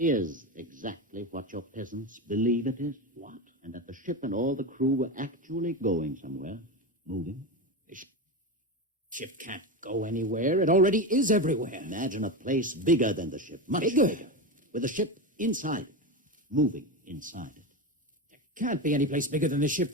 exactly what your peasants believe it is? What? And that the ship and all the crew were actually going somewhere, moving? The ship can't go anywhere. It already is everywhere. Imagine a place bigger than the ship, much Bigger? bigger, with the ship inside it, moving inside it. There can't be any place bigger than the ship.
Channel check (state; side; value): normal; both; correlation 0.18